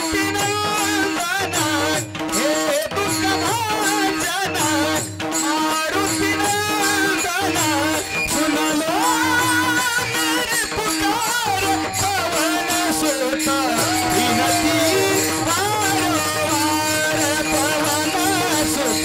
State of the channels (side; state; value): both; identical; correlation 1.00